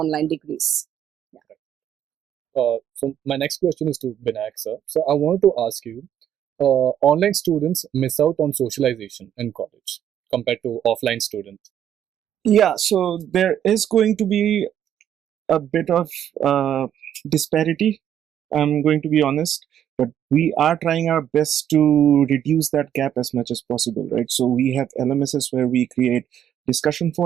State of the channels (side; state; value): left; quieter; 10.0 dB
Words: degrees. So my next question is to Binayak sir. So I wanted to ask you, online students miss out on socialization in college compared to offline students. Yeah, so there is going to be a bit of disparity. I'm going to be honest, but we are trying our best to reduce that gap as much as possible, right? So we have LMSs where we create discussion